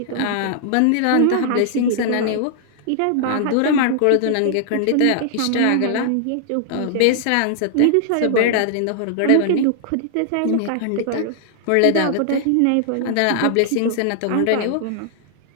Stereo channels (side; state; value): both; different; correlation -0.01